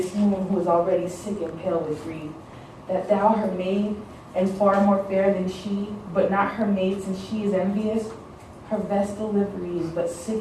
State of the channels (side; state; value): both; identical; correlation 1.00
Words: moon who is already sick and pale with grief. That thou, her maid, and far more fair than she, but not her maid since she is envious, her vestal livery is but